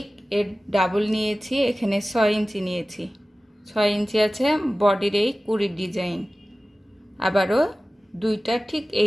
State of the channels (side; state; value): both; normal; correlation 0.97